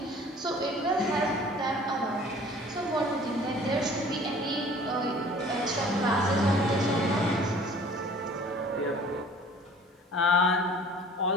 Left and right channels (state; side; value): normal; both; correlation 0.49